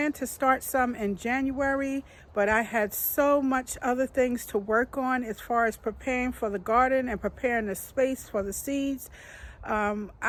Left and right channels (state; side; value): identical; both; correlation 1.00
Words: to start some in January, but I had so much other things to work on as far as preparing for the garden and preparing the space for the seeds.